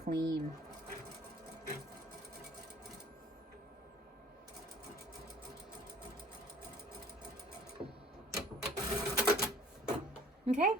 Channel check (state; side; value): normal; both; correlation 0.53